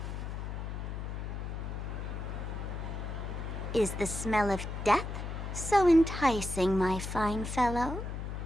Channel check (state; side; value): noise; left; hum, 5 dB below the sound